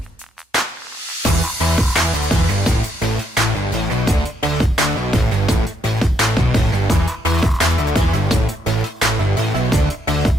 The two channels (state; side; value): normal; both; correlation 0.75